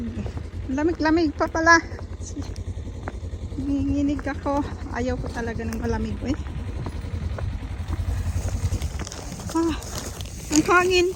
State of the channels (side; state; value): both; identical; correlation 1.00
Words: Lamig pa pala. Nanginginig ako. Ayaw ko talaga ng malamig. Ah, ang hangin